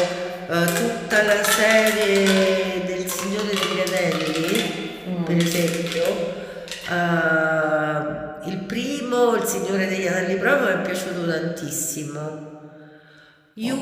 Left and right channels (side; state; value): both; identical; correlation 1.00